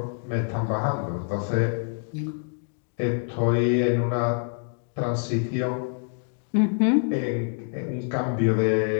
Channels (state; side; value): silent; right; 57 dB below the other